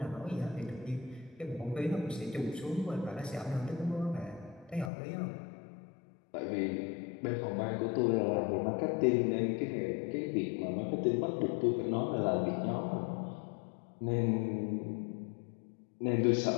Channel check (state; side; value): drops out; right; at 4.9 s